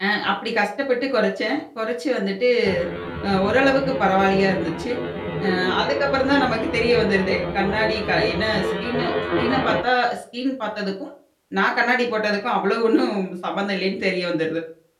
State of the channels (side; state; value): both; identical; correlation 1.00